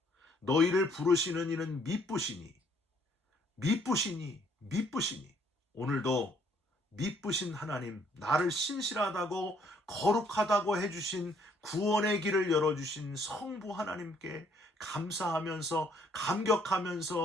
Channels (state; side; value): normal; both; correlation 0.65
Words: 너희를 부르시는 이는 미쁘시니, 미쁘시니, 미쁘시니. 오늘도 미쁘신 하나님, 나를 신실하다고 거룩하다고 해주신, 구원의 길을 열어주신 성부 하나님께 감사하면서,